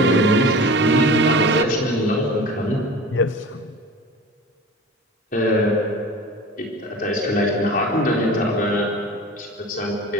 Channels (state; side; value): normal; both; correlation 0.36